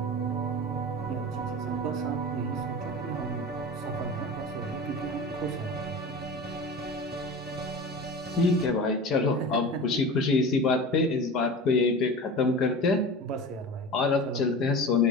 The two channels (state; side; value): normal; both; correlation 0.33